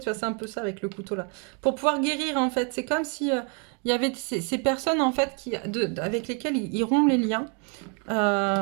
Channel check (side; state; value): left; quieter; 36.0 dB